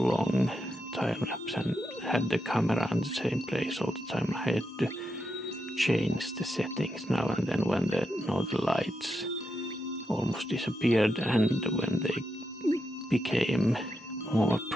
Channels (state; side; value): normal; both; correlation 0.85